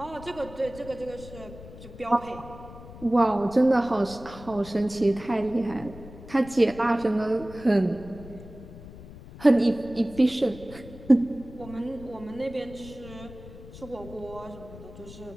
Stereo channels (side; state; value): left; noise; rumble, 16 dB below the sound